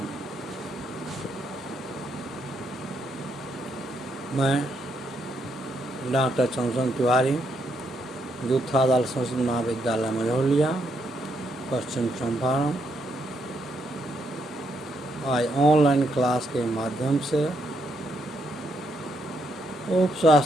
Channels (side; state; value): both; normal; correlation 0.77